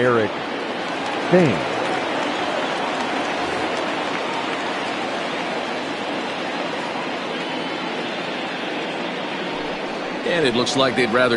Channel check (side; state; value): both; identical; correlation 1.00